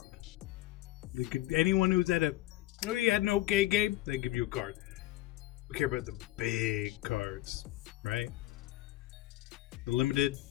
They could, anyone who's at you had an okay game, they give you a card. We care about the big cards, right? The limited,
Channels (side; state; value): right; quieter; 16.6 dB